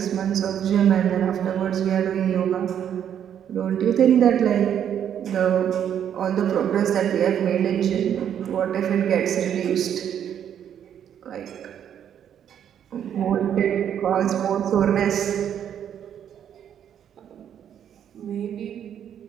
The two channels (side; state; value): left; quieter; 9.3 dB